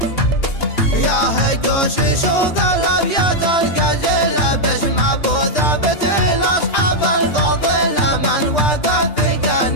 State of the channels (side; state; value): right; late; 2.8 ms